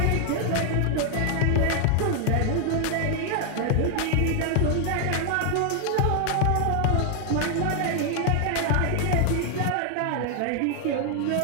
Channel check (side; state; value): both; different; correlation 0.00